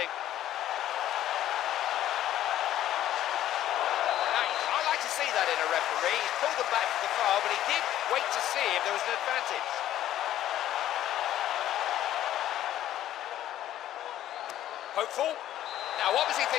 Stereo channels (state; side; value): quieter; right; 12.5 dB